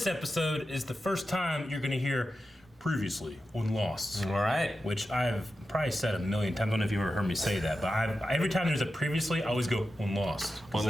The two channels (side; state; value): both; normal; correlation 0.91